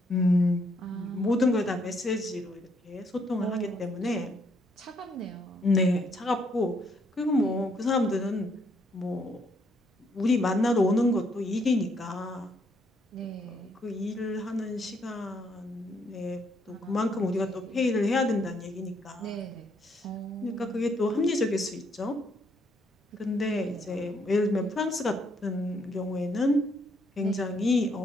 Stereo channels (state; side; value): normal; both; correlation 0.71